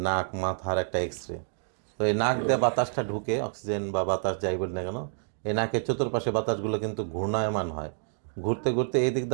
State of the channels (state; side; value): silent; left; digital silence